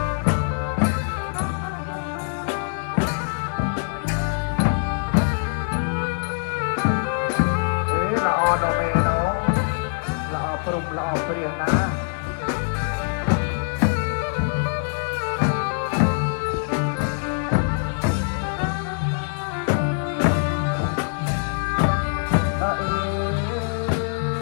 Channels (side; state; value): right; silent; 63 dB below the other